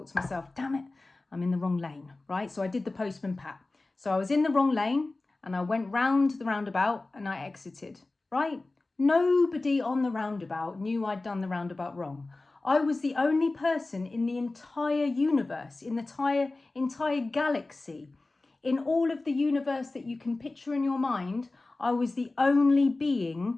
to myself, damn it, I'm in the wrong lane, right? So I did the Postman Pat. So I was in the wrong lane and I went round the roundabout and I exited, right? Nobody on the roundabout knew I'd done the roundabout wrong. I was the only person in the entire universe, in the entire galaxy, in all of the universe that you can picture in your mind. I was the only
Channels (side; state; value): right; quieter; 3.2 dB